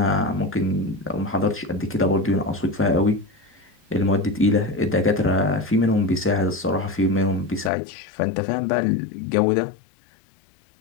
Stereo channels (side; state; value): right; drops out; at 7.7 s